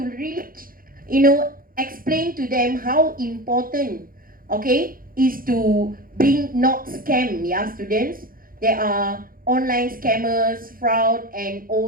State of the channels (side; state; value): left; late; 0.42 ms